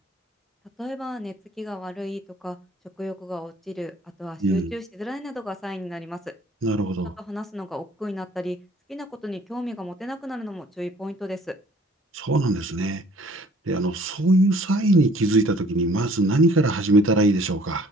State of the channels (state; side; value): normal; both; correlation 0.55